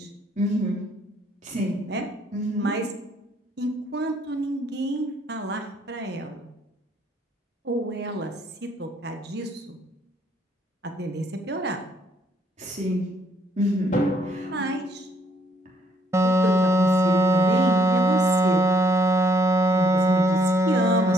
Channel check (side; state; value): both; normal; correlation 0.68